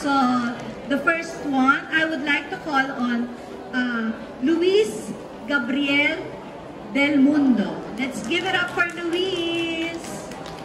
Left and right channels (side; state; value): both; identical; correlation 1.00